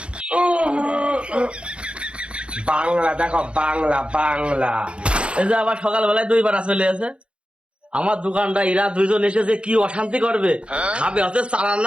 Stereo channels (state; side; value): late; left; 0.058 ms